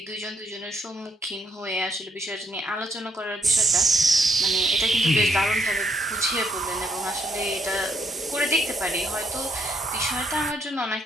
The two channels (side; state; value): both; normal; correlation 0.73